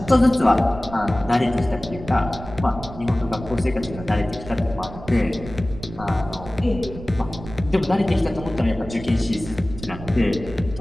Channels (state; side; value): noise; right; rumble, 13 dB below the sound